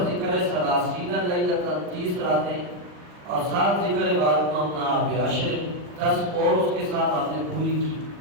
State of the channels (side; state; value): left; late; 40 ms